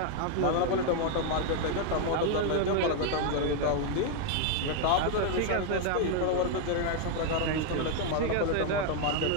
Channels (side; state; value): both; different; correlation 0.00